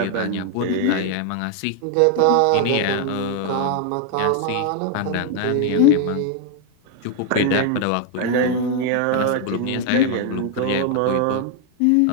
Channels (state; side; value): different; both; correlation 0.00